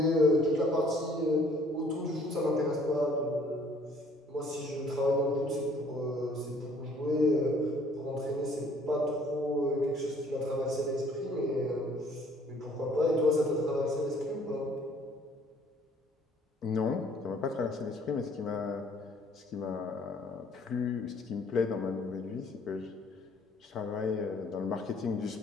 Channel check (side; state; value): both; normal; correlation 0.59